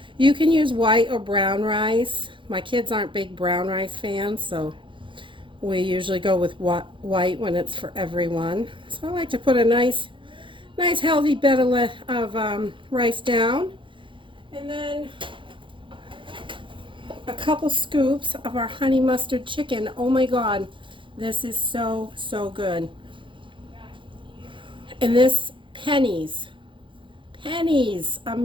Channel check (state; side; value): late; left; 0.24 ms